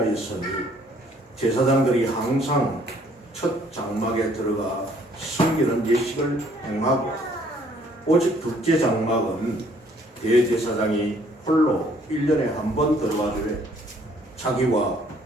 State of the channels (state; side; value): normal; both; correlation 0.62